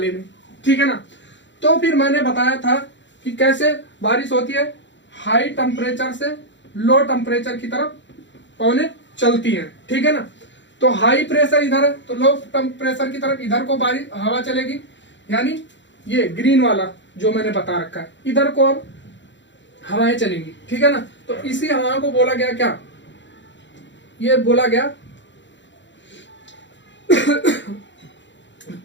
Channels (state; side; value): late; right; 0.53 ms